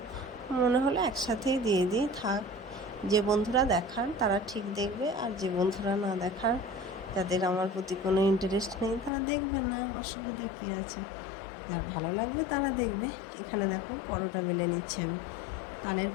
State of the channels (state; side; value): drops out; right; at 9.1 s